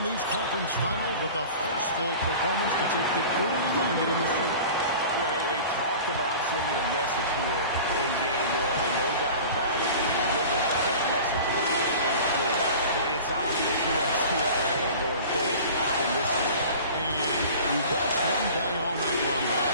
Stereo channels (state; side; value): inverted; both; correlation -0.39